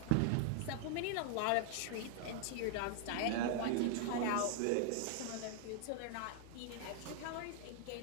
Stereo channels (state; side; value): different; both; correlation 0.00